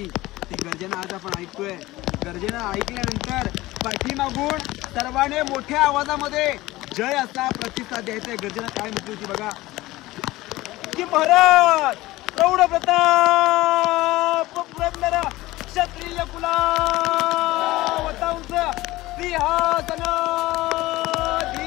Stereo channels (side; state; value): right; quieter; 18.4 dB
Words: ती गर्जना आज आपण ऐकतोय. गर्जना ऐकल्यानंतर पाठीमागून सर्वांनी मोठ्या आवाजामध्ये जय असा प्रतिसाद द्यायचा. गर्जना काय म्हटली होती बघा की महाराज प्रौढ प्रताप पुरंदर क्षत्रिय कुलावतांस सिंहासनाधीश्वर